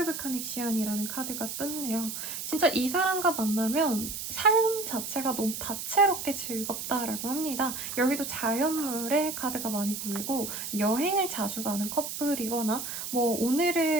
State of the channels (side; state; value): right; noise; hiss, 6 dB below the sound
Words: 오브 커넥션이라는 카드가 떴네요. 진짜 이 사람과 만나면 삶 자체가 너무 다채롭게 즐겁다라고 합니다. 여기도 자연물의 카드가 많이 보이고 여행을 자주 가는 커플이거나 뭐